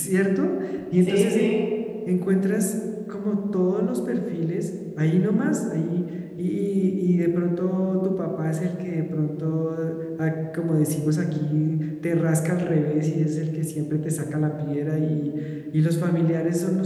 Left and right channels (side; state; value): both; identical; correlation 1.00